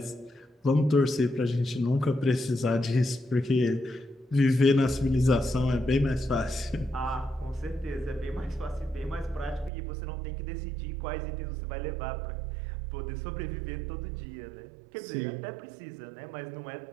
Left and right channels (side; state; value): left; drops out; at 9.7 s